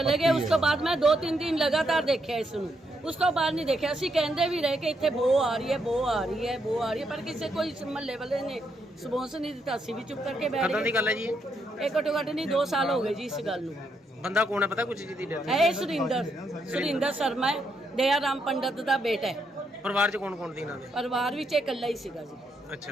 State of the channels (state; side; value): normal; both; correlation 0.78